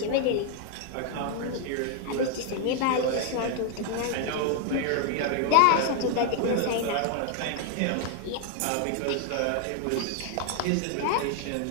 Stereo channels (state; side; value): different; both; correlation 0.00